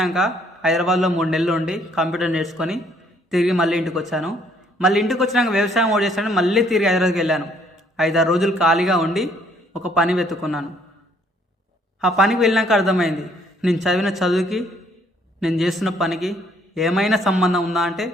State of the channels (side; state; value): both; normal; correlation 0.64